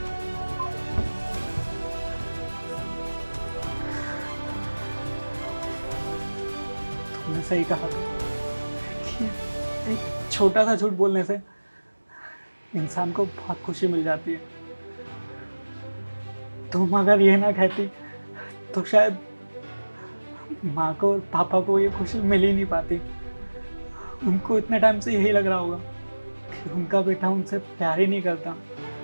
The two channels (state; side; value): inverted; both; correlation -1.00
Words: तुमने सही कहा था कि एक छोटा सा झूठ बोलने से इंसान को बहुत खुशी मिल जाती है। तुम अगर ये ना कहती तो शायद माँ को और पापा को ये खुशी मिल ही नहीं पाती। उनको इतने टाइम से यही लग रहा होगा कि उनका बेटा उनसे प्यार ही नहीं करता,